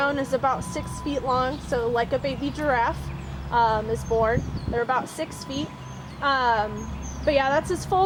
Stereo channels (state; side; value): identical; both; correlation 1.00